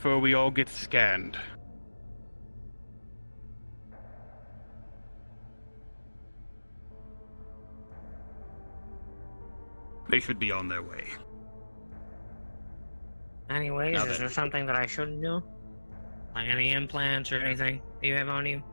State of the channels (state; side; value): inverted; both; correlation -1.00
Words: we all get scanned. They should be on their way. Anyways, is there something that I shouldn't do? Like any implants or anything that you have on you?